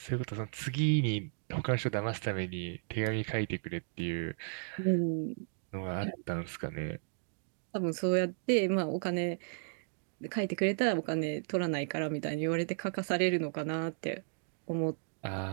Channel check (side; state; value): left; silent; digital silence